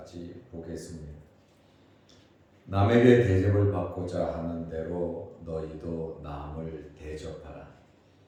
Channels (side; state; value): both; identical; correlation 1.00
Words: 보겠습니다. 남에게 대접을 받고자 하는 대로 너희도 남을 대접하라.